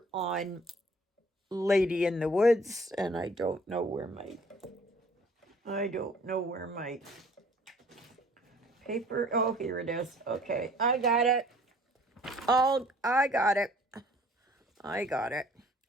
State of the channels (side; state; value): both; normal; correlation 0.55